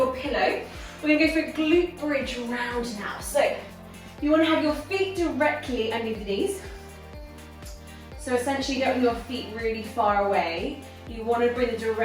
pillow. We're going to go for a glute bridge round now. So you want to have your feet directly underneath the knees. So essentially you don't want your feet really far away. You want to bring them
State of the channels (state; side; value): identical; both; correlation 1.00